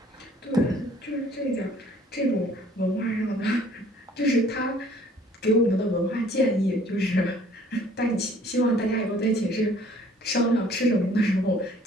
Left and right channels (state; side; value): normal; both; correlation 0.56